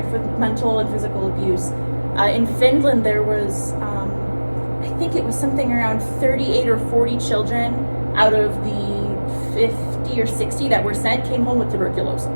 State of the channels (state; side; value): inverted; both; correlation -1.00